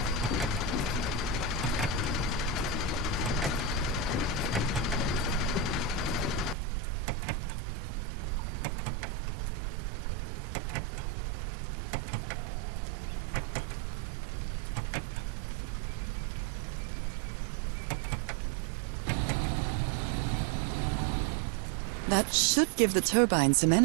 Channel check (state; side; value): drops out; left; at 6.6 s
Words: That should give the turbine some